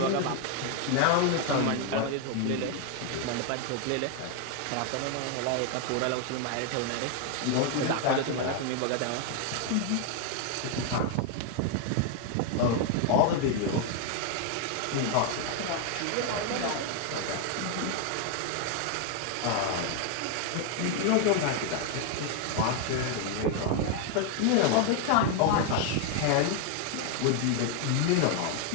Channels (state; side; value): different; both; correlation 0.00